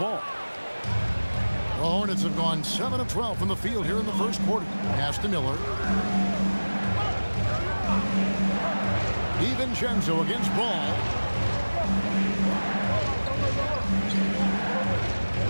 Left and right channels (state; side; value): inverted; both; correlation -1.00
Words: The Hornets have gone 7 of 12 from the field here in the first quarter. Pass to Miller. DiVincenzo against Ball.